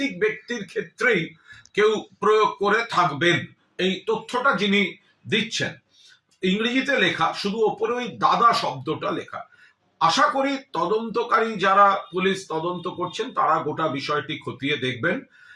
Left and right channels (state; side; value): identical; both; correlation 1.00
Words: ব্যক্তির ক্ষেত্রেই কেউ প্রয়োগ করে থাকবেন। এই তথ্যটা যিনি দিচ্ছেন ইংরেজিতে লেখা, শুধু ওপরে ওই দাদা শব্দটা লেখা। আশা করি তদন্তকারী যারা পুলিশ তদন্ত করছেন তারা গোটা বিষয়টি খতিয়ে দেখবেন।